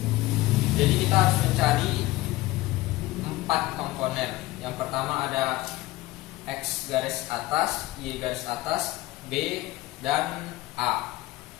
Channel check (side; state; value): right; quieter; 18.1 dB